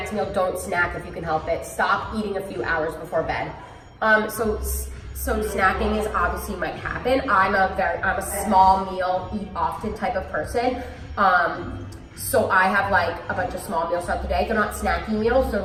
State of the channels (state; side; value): identical; both; correlation 1.00